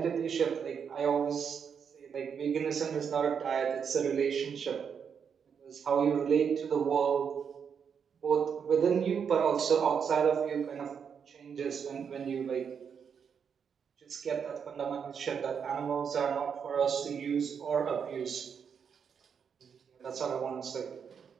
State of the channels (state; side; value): quieter; left; 7.0 dB